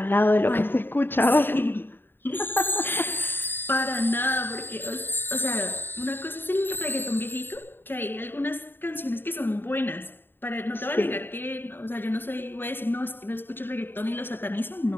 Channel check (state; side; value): late; right; 0.098 ms